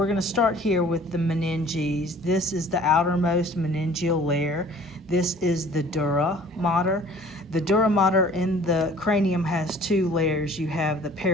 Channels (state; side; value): normal; both; correlation 0.51